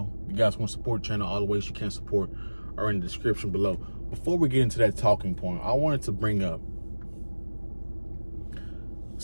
If you guys want to support the channel, all the ways you can support are in the description below. Before we get into that talking point, I wanted to bring up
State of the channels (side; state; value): both; inverted; correlation -1.00